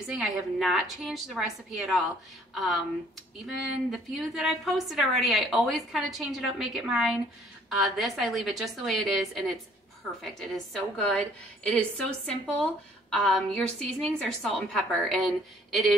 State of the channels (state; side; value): normal; both; correlation 0.60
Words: I have not changed the recipe at all. Even the few that I've posted already, I always kind of change it up, make it mine. This, I leave it just the way it is, and it's perfect. It is so good. It is so simple. Your seasonings are salt and pepper, and it